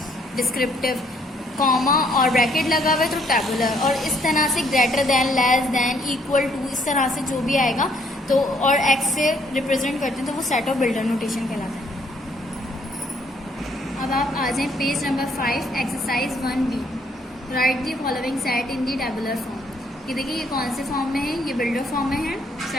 डिस्क्रिप्टिव, कॉमा और ब्रैकेट लगा हुआ है तो टैबुलर, और इस तरह से greater than, less than, equal to, इस तरह से जो भी आएगा तो और X से रिप्रेजेंट करते हैं तो वो सेट ऑफ बिल्डर नोटेशन कहलाता है। अब आप आ जाएं page number 5, exercise 1B। Right the following set in the tabular form. ये देखिए ये कौन से फॉर्म में है? ये बिल्डर फॉर्म में है,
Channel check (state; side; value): normal; both; correlation 0.67